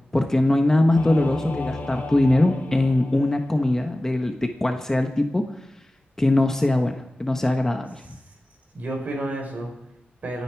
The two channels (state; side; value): normal; both; correlation 0.96